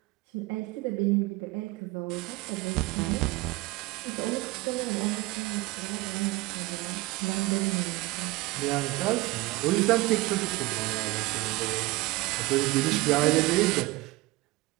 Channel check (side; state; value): left; quieter; 21.0 dB